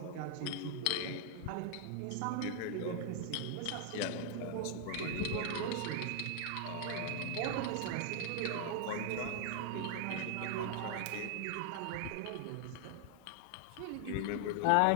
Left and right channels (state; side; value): different; both; correlation 0.00